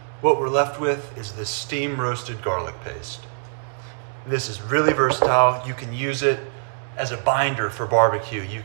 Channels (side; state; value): left; silent; digital silence